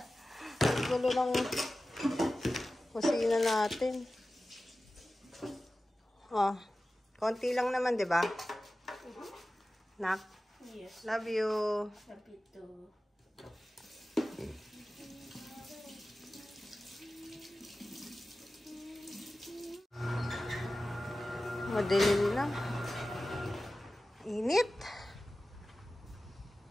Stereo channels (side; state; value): both; normal; correlation 0.95